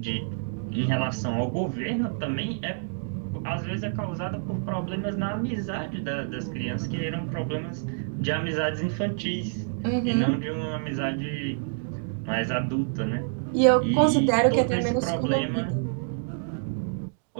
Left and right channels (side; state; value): left; silent; digital silence